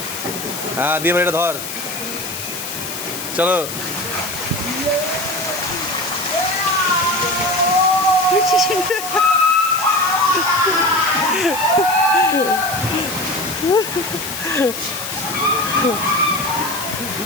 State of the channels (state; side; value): noise; left; hiss, 8 dB below the sound